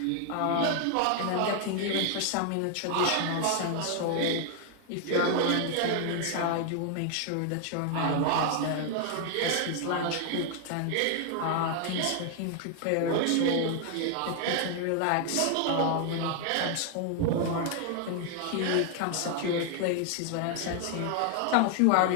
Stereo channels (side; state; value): both; different; correlation 0.00